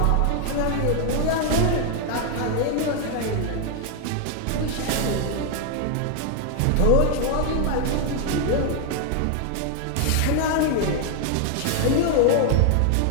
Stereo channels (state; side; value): different; both; correlation 0.00